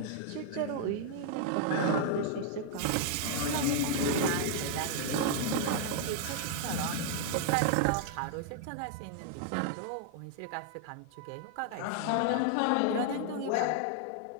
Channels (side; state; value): both; different; correlation 0.00